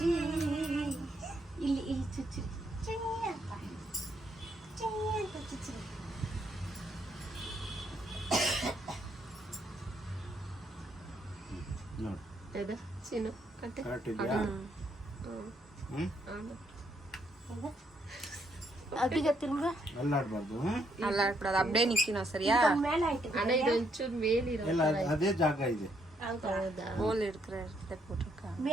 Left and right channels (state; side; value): normal; both; correlation 0.73